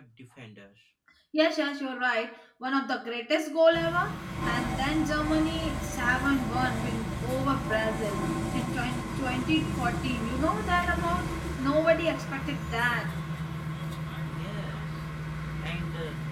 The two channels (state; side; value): identical; both; correlation 1.00